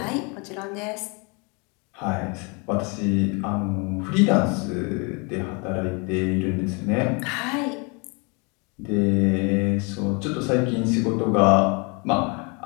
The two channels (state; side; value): quieter; right; 31.9 dB